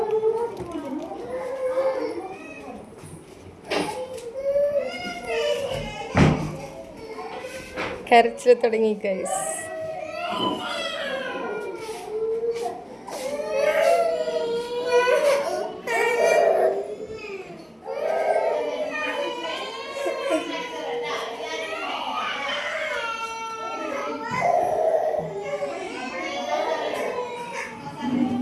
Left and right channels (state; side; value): identical; both; correlation 1.00